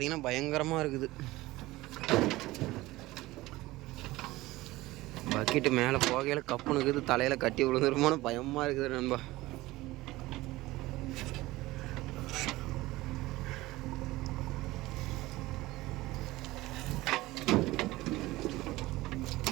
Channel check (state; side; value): quieter; left; 18.8 dB